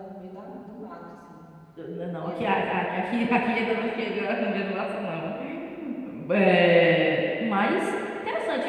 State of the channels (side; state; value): both; identical; correlation 1.00